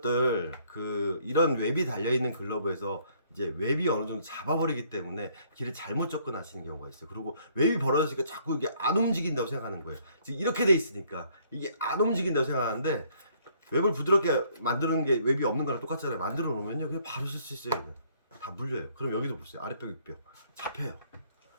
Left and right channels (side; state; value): both; inverted; correlation -0.64